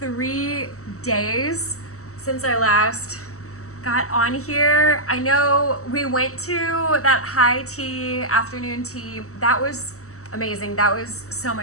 days since I last got on here. I know we went to that high tea, afternoon tea. That was amazing. That was so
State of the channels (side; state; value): right; late; 0.64 ms